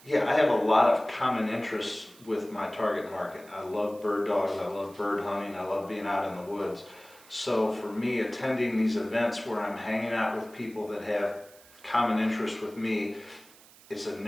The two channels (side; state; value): right; noise; hiss, 24 dB below the sound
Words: Yeah, I have a lot of common interests with my target market. I love bird dogs, I love bird hunting, I love being out in the woods. So for me, attending these events where I'm hanging out with people that have common interests with me, it's a